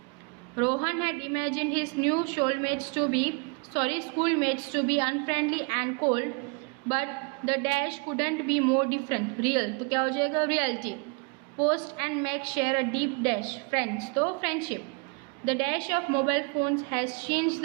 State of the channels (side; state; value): left; quieter; 32.8 dB